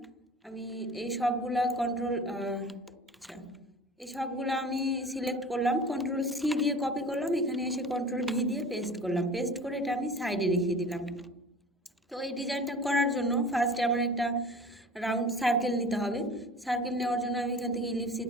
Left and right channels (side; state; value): both; normal; correlation 0.40